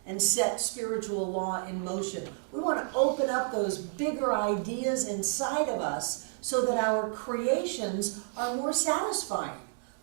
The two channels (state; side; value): silent; left; digital silence